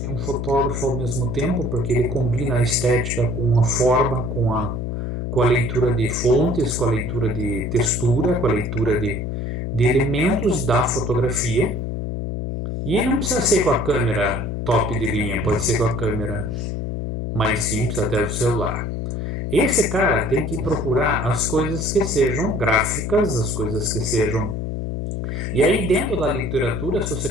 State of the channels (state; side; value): noise; left; hum, 3 dB below the sound